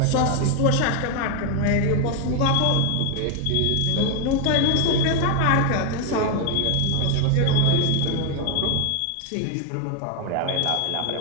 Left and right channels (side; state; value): both; different; correlation 0.01